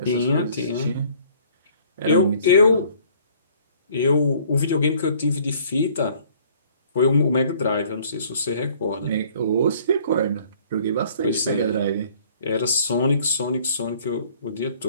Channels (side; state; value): both; inverted; correlation -0.57